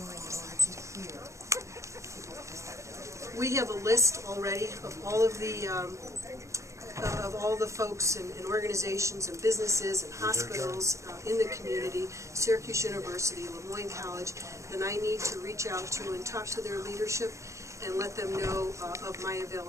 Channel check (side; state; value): left; late; 0.15 ms